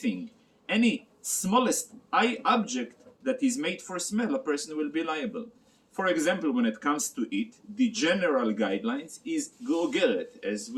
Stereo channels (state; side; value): identical; both; correlation 1.00